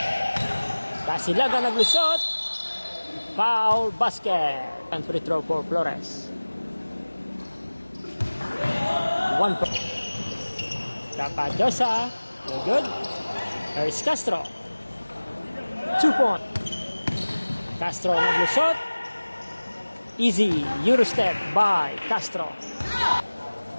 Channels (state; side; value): inverted; both; correlation -1.00